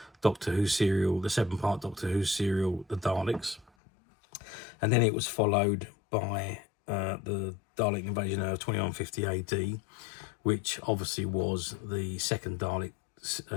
Doctor Who serial, the 7-part Doctor Who serial, The Daleks, and then it was followed by the Dalek Invasion of 2150 AD, which obviously was the second Dalek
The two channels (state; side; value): drops out; right; at 3.7 s